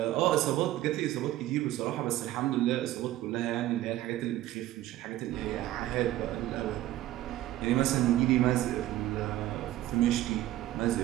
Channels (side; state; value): left; quieter; 14.7 dB